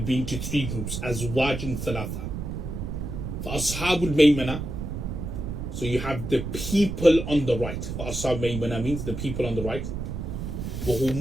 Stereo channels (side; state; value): right; noise; rumble, 5 dB below the sound